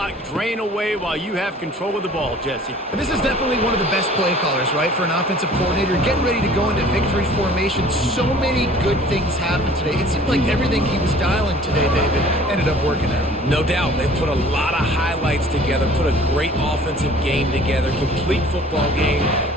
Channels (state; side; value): normal; both; correlation 0.50